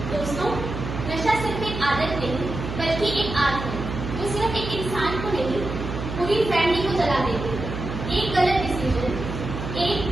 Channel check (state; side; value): noise; right; hum, 6 dB below the sound